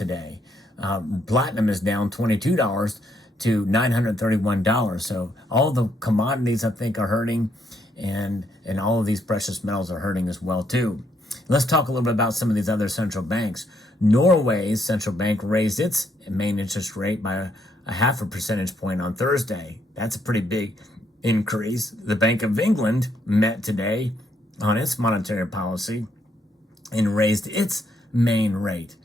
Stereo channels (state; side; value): normal; both; correlation 0.74